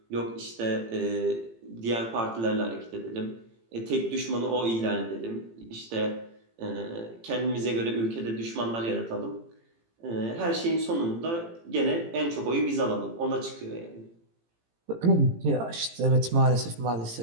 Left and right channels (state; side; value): late; left; 18 ms